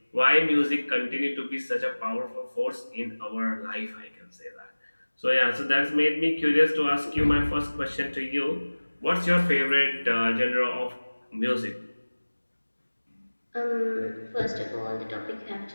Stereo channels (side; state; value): both; inverted; correlation -1.00